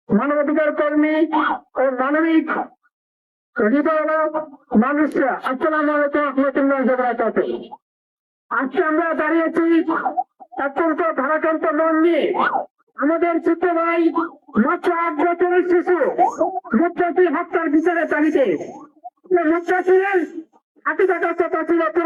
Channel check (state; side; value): identical; both; correlation 1.00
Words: মানবাধিকার কর্মী ও মানবিক হৃদয় মানুষরা, আসসালামু আলাইকুম ওয়া রাহমাতুল্লাহি ওয়া বারাকাতুহু। আজকে আমরা দাঁড়িয়েছি অত্যন্ত ভারাক্রান্ত মন নিয়ে। আমাদের ছোট ভাই মাত্র 8 বছরের শিশু মুত্তাসির হত্যার বিচারের দাবিতে। মুত্তাসিরের হাতে থাকার কথা ছিল